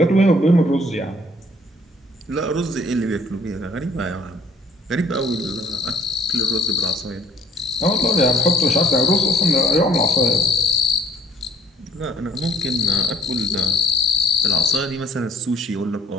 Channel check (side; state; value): both; normal; correlation 0.58